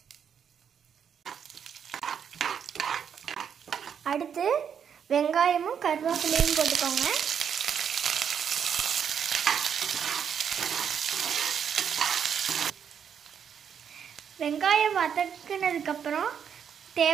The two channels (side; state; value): left; quieter; 7.8 dB